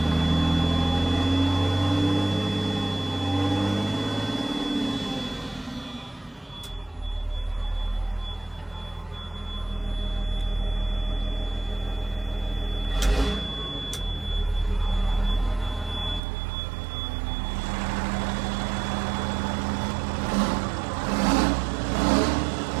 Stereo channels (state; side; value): drops out; left; at 16.2 s